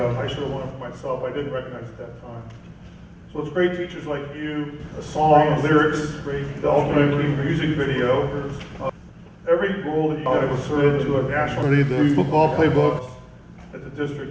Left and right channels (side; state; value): both; identical; correlation 1.00